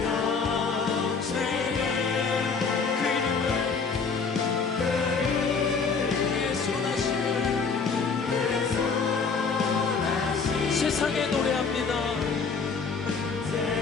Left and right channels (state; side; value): quieter; right; 5.1 dB